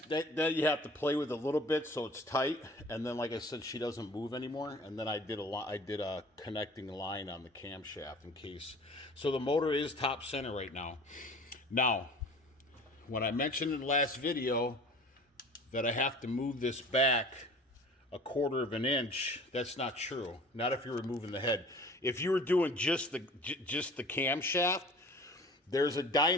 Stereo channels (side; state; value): both; normal; correlation 0.44